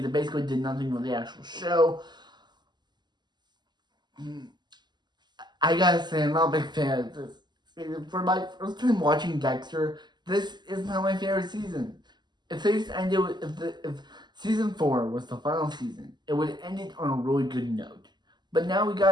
it basically did nothing with the actual show. I gotta say, I'm not a big fan of this. For my first time watching Dexter, this is not my favorite season. If they just ended with, if season 4 was the final season, it would have ended on a really good note. But now we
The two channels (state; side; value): late; left; 0.21 ms